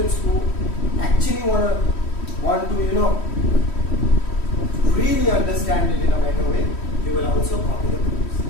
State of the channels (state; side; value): late; right; 3.1 ms